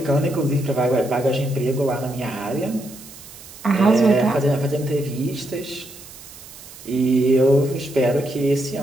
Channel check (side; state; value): right; noise; hiss, 18 dB below the sound